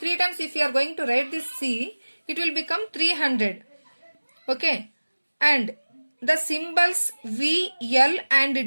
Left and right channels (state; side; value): inverted; both; correlation -1.00